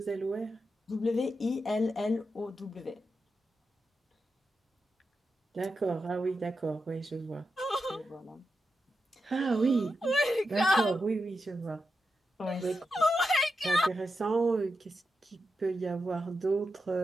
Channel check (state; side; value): normal; both; correlation 0.88